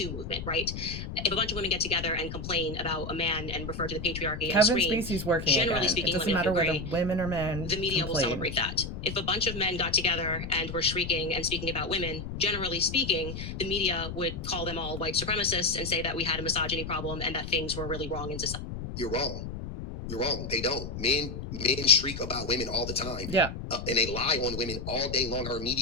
movement, right? If a bunch of women get together and complain about a man and refer to the patriarchy and Kevin scream, Spacey's working generally again. speaking, It doesn't let me know matter if you whether agree, women or men the media will complain. celebrate that. If a bunch of men got together and were shrieking and speaking about women, generally speaking, the media would call them all white supremacists and say that we had a misogyny problem and that things were really wrong in society. You're wrong. You're wrong. They don't. Men shriek about women all the time. Yeah. And they lie on women all day long. Our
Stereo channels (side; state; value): left; noise; rumble, 7 dB below the sound